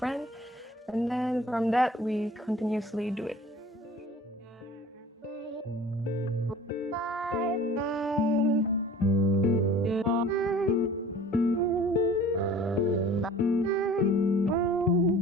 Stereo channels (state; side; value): normal; both; correlation 0.46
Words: and then from that we continuously do it.